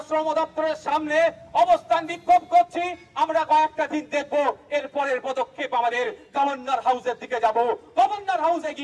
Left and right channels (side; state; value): both; identical; correlation 1.00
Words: শ্রম দপ্তরের সামনে অবস্থান বিক্ষোভ করছি, আমরা কয়েকটা দিন দেখবো, এর পরের পদক্ষেপ আমাদের গভর্নর হাউসের দিকে যাব। গভর্নর হাউসে